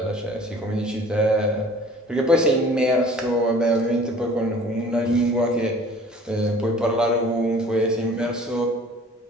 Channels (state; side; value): normal; both; correlation 0.49